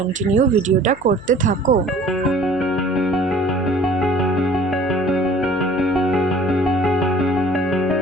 ভিডিওটা করতে থাকো।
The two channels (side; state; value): left; noise; hum, 22 dB below the sound